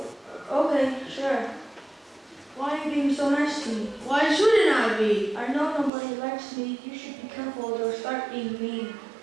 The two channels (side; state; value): left; drops out; at 5.9 s